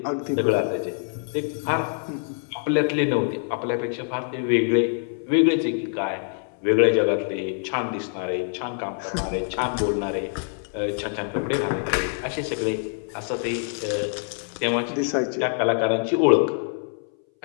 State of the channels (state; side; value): silent; right; 60 dB below the other